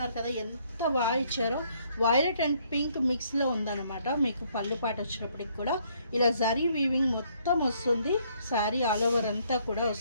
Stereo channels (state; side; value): inverted; both; correlation -0.67